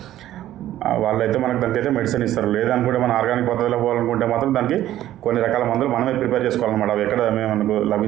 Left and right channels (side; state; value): left; quieter; 13.3 dB